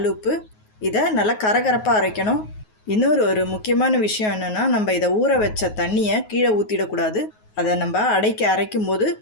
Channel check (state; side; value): late; right; 9.4 ms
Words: இதை நல்லா கரகரப்பாக அரைக்கணும். இன்னொரு முக்கியமான விஷயம் என்னென்னா, நம்ம இதை ஊற வச்ச தண்ணியை கீழே ஊற்றிடக்கூடாது. அதை நம்ம அடைக்க அரைக்கும் போது